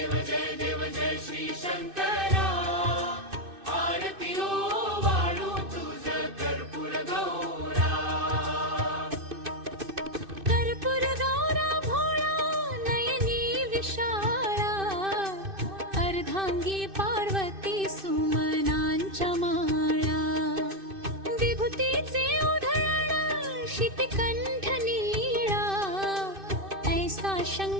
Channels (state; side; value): late; left; 2.6 ms